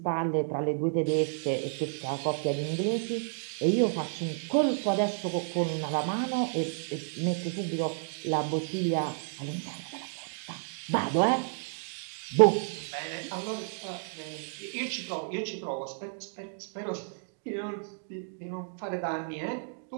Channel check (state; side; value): silent; left; digital silence